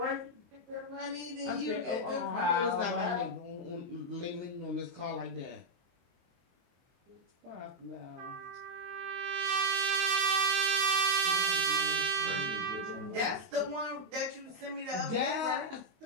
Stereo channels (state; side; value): late; left; 23 ms